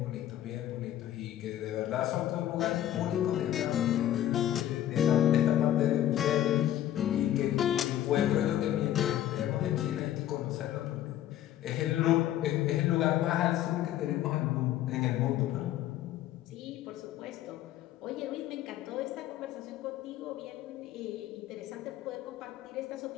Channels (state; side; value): quieter; right; 12.3 dB